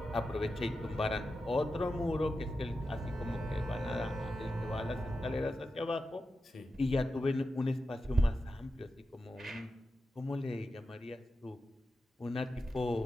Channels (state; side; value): normal; both; correlation 0.90